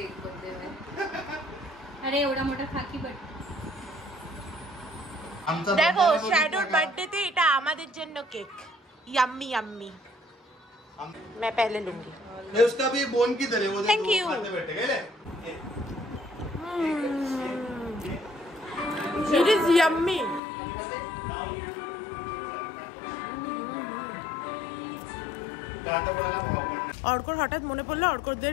बर्थडे में। अरे एवढा मोठा खाकी बट দেখো শ্যাডোর বার্থডেতে এটা আমাদের জন্য কেক, यम्मी यम्मी। मैं पहले लूंगी। ये उसका भी बोन किधर है वो देखो। Thank you। खाते बैठे गए ले। It is yummy। অর্কর হঠাৎ মনে পড়লো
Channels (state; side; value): drops out; right; at 20.4 s